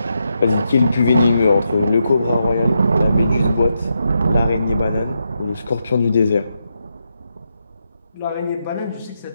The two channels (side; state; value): both; inverted; correlation -0.84